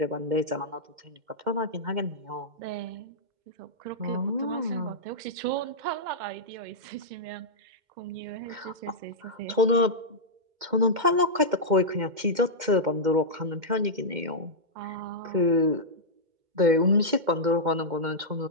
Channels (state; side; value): late; left; 2.1 ms